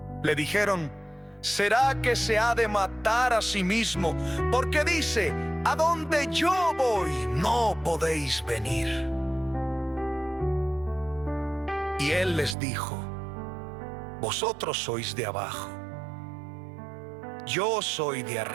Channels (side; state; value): left; drops out; at 12.6 s